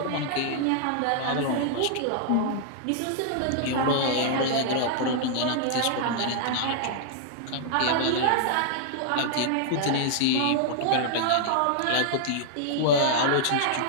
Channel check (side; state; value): both; different; correlation -0.01